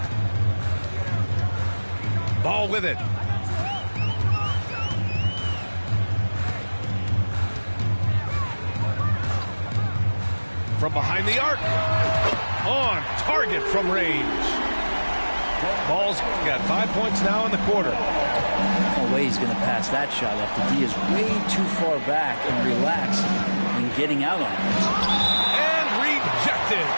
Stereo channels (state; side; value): inverted; both; correlation -1.00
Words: Ball with it. From behind the arc. On target from range. Ball's got 5 points now in the quarter. No way he's going to pass that shot up. The D is way too far back and relaxed in getting out on it. And rejected.